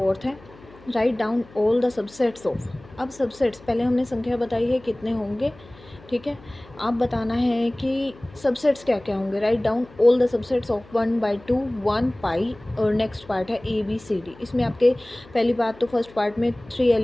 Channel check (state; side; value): noise; left; hum, 23 dB below the sound